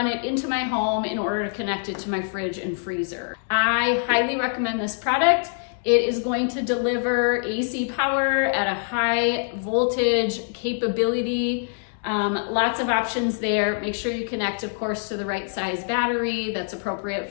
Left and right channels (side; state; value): right; silent; digital silence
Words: it into my home in order to connect it to my fridge and freezer. I highly recommend this product. It is going to deliver AC power at a high voltage capability. Lots of options there. Make sure you connect, of course, to the right size battery that's appropriate